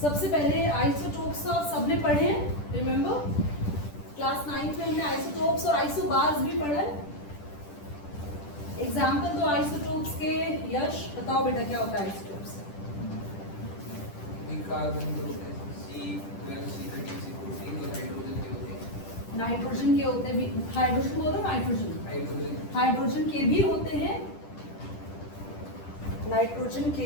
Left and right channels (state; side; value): late; right; 10 ms